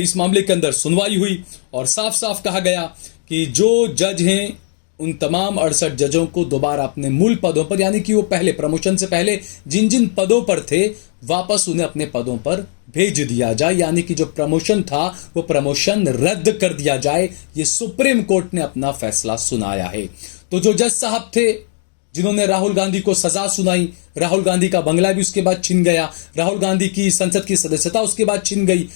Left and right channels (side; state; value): right; silent; digital silence